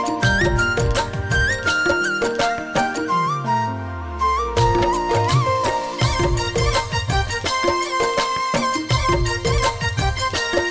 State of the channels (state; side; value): identical; both; correlation 1.00